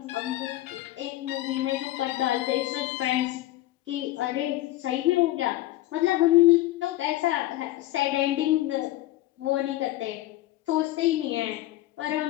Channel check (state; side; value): quieter; right; 16.1 dB